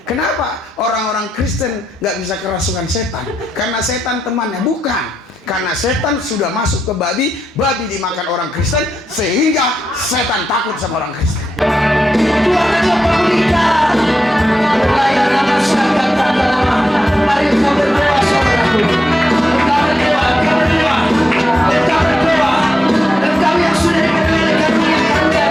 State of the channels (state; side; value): normal; both; correlation 0.86